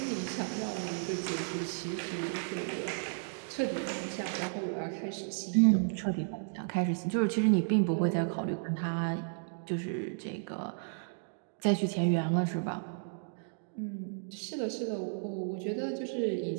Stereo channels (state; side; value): silent; left; digital silence